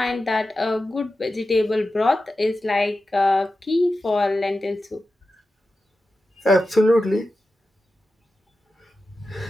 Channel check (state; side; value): normal; both; correlation 0.92